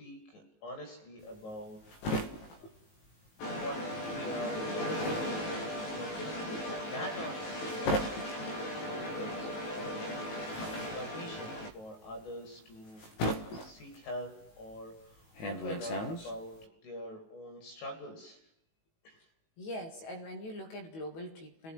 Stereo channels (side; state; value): right; late; 18 ms